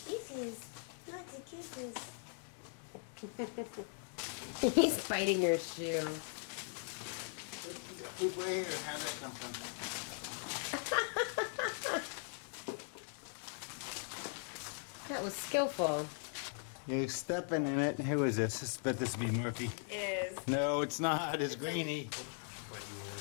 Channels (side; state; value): right; silent; 51 dB below the other